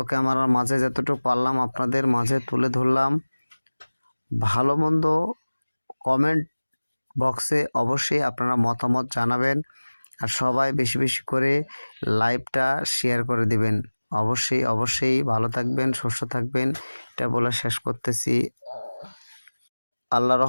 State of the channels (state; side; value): inverted; both; correlation -1.00